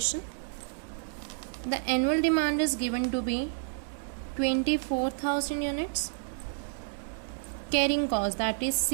The annual demand is given to be 24,000 units. Carrying cost, that is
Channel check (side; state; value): left; silent; 58 dB below the other